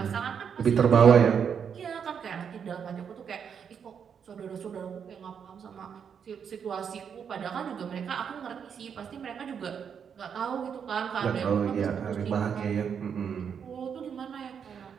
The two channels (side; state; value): left; quieter; 7.3 dB